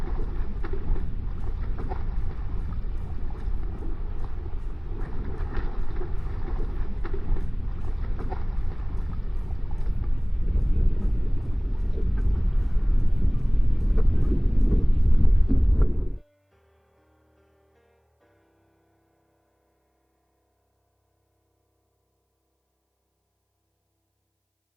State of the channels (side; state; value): both; identical; correlation 1.00